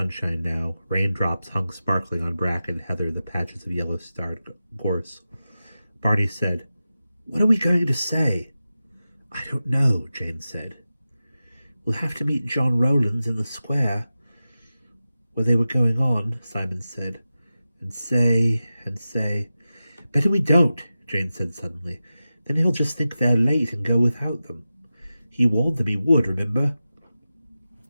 now. Raindrops hung sparkling on bracken, heather, the patches of yellow-starred gorse. Barney said, "What are we going to say?" "I don't know," Jane said. "We'll have to meet John Rowlands in the square where they were going on," Simon said. And say. "Better we don't," Jane said suddenly. "Then he'll just think they're late and go without them. He warned them he would, remember?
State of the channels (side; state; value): both; inverted; correlation -0.94